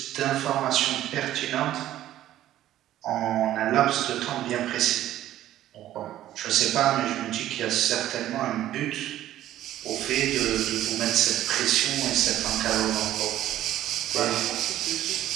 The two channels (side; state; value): left; quieter; 13.1 dB